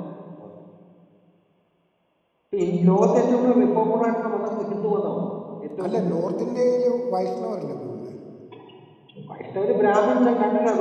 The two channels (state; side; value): identical; both; correlation 1.00